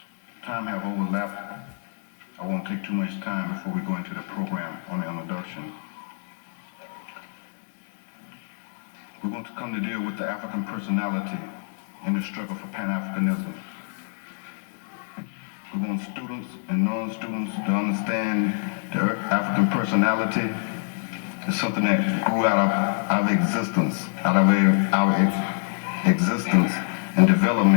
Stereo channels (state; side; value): silent; right; 61 dB below the other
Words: time have overlapped, I won't take too much time before we go into the program on the introduction. We're going to come to deal with the African personality in the struggle for Pan-Africanism. We want students and non-students to understand the African personality is something that grew out of our existence and